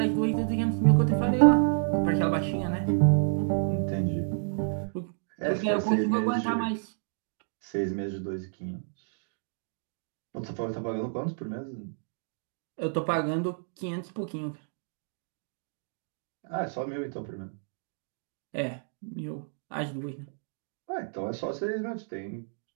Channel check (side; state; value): left; silent; digital silence